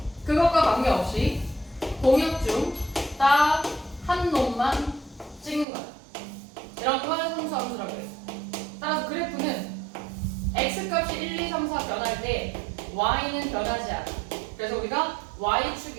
그것과 관계없이 공역 중 딱 한 놈만 찍는 거야. 이런 걸 상수함수라고 해요. 따라서 그래프는 x값이 1, 2, 3, 4 변할 때 y는 변하지 않아. 그래서 우리가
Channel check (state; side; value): drops out; left; at 5.7 s